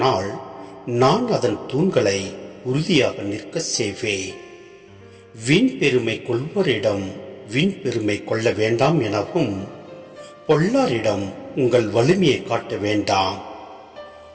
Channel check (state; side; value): identical; both; correlation 1.00